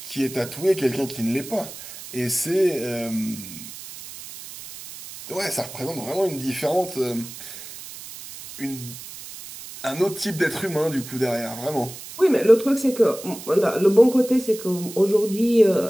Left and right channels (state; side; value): noise; right; hiss, 13 dB below the sound